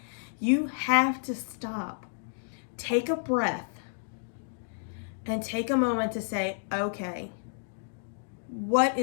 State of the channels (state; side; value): silent; right; digital silence